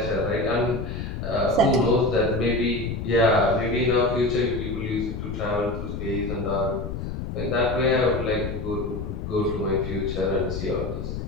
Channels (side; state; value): left; noise; rumble, 6 dB below the sound